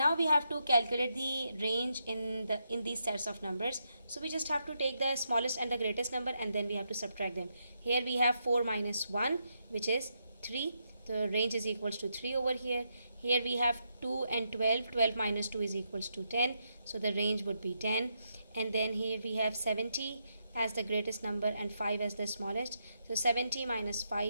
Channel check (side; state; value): both; inverted; correlation -0.81